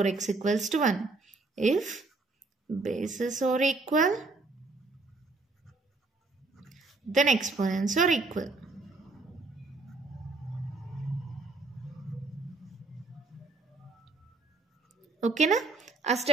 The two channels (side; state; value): left; quieter; 3.5 dB